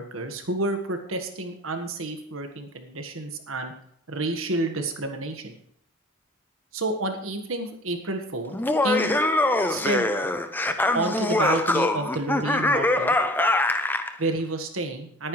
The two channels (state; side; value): normal; both; correlation 0.45